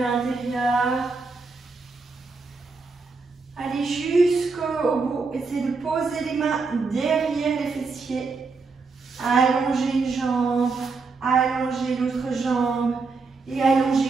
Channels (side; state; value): left; quieter; 4.3 dB